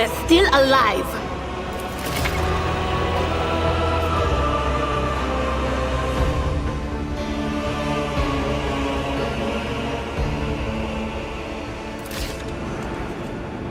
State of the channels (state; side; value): identical; both; correlation 1.00